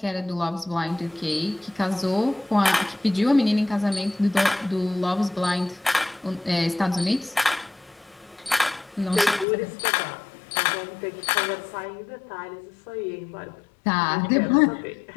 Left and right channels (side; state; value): right; drops out; at 9.5 s